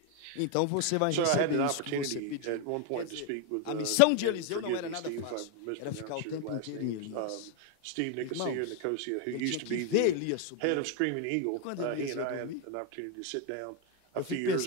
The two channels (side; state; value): both; different; correlation 0.01